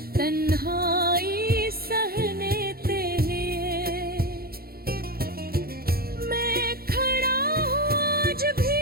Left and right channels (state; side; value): late; left; 0.44 ms